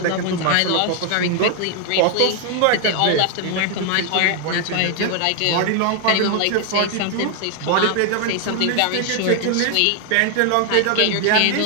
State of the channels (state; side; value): different; both; correlation 0.00